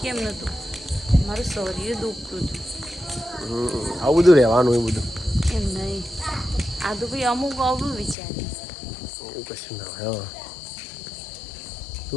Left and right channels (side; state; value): right; drops out; at 8.2 s